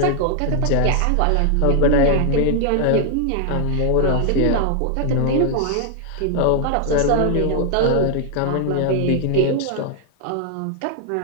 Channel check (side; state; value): both; different; correlation 0.00